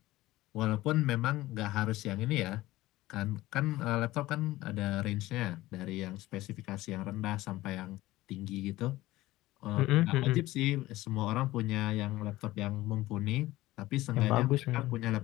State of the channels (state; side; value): quieter; right; 17.3 dB